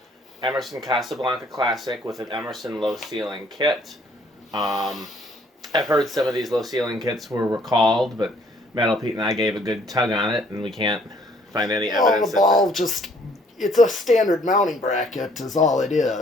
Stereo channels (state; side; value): normal; both; correlation 0.62